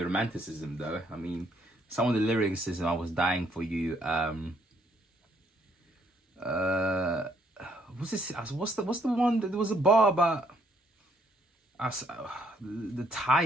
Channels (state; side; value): normal; both; correlation 0.69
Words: romanticism though. I mean, some of the lyricism, I was dying for you. What's this? What's the one that there was a bar about? The